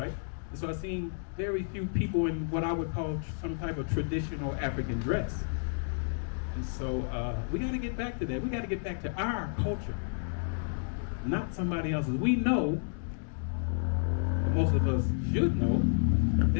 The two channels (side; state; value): right; silent; digital silence